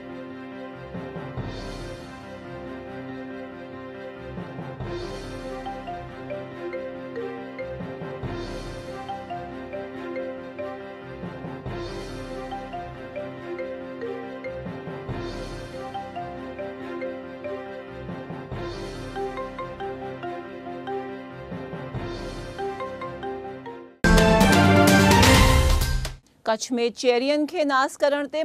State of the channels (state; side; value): identical; both; correlation 1.00